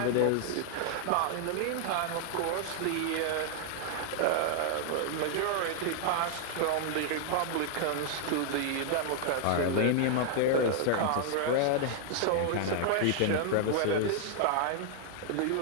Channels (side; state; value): both; different; correlation 0.00